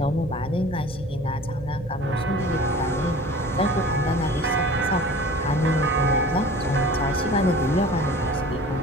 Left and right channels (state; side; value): normal; both; correlation 0.42